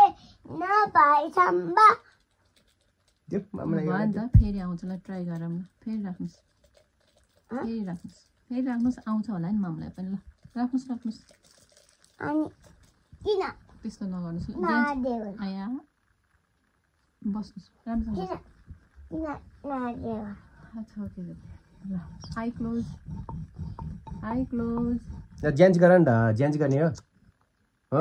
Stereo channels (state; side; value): identical; both; correlation 1.00